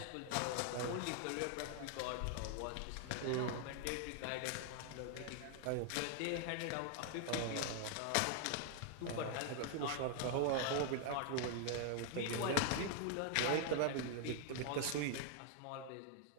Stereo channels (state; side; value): different; both; correlation 0.00